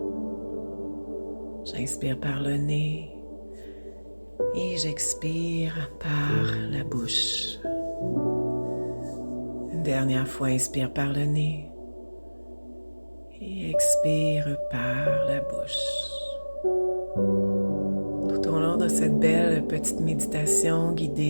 J'inspire par le nez et j'expire par la bouche. Une dernière fois, inspire par le nez et expire par la bouche. Tout au long de cette belle petite méditation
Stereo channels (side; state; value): both; inverted; correlation -1.00